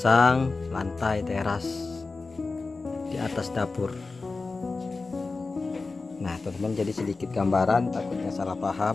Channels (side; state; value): right; quieter; 3.9 dB